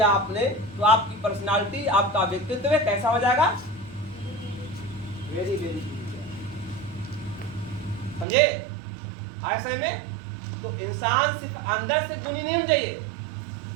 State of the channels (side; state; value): left; drops out; at 8.2 s